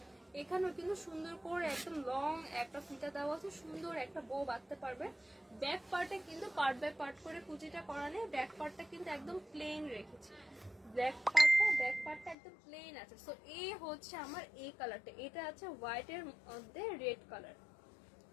এখানেও কিন্তু সুন্দর করে একদম লং একটা ফিতা দেওয়া আছে, সুন্দর একটা বো বাঁধতে পারবে। ব্যাক পার্টে কিন্তু পার্ট বাই পার্ট করে কুচিটা করা নেই, ব্যাক পার্টটা কিন্তু একদম প্লেন রেখেছি। ব্যাক পার্টটা একদম প্লেন আছে। সো এই হচ্ছে আমার এই কালারটা, এটা আছে হোয়াইট এর মধ্যে রেড কালার,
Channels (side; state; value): right; drops out; at 12.4 s